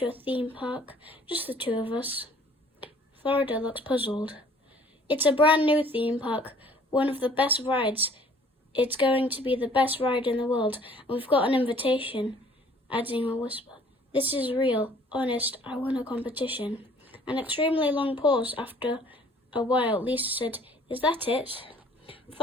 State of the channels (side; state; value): both; normal; correlation 0.56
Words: a theme park, just the two of us." Florida looks puzzled. "It's a brand new theme park, one of the best rides. It's going to be the best ride in the world, and we've got an invitation," adding a whisper. "This is real, honest, I won a competition." An extremely long pause. After a while, Lisa said, "Is that it?"